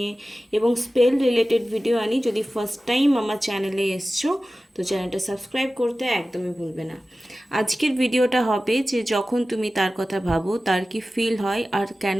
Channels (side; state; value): both; normal; correlation 0.95